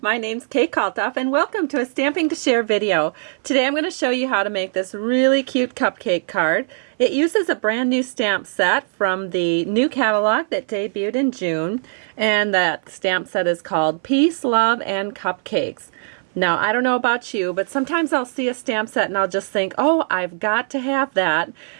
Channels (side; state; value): left; silent; 62 dB below the other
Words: my name's Kalthoff and welcome to a Stamping to Share video. Today I'm going to show you how to make this really cute cupcake card. It uses a brand new stamp set from the new catalog that debuted in June, and that stamp set is called Peace, Love, and Cupcakes. Now I don't know about you, but sometimes I'll see a stamp set and I'll just think, oh, I've got to have that,